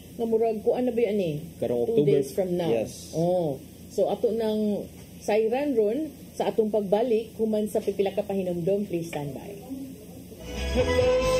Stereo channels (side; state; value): both; identical; correlation 1.00